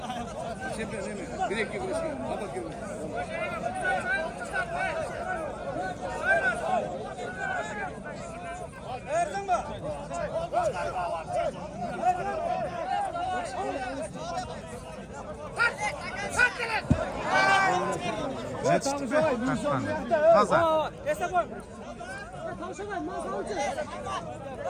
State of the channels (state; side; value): identical; both; correlation 1.00